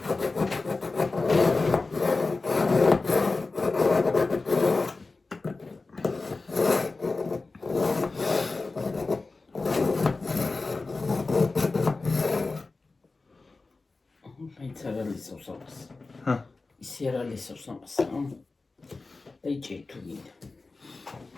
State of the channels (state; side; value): quieter; right; 3.7 dB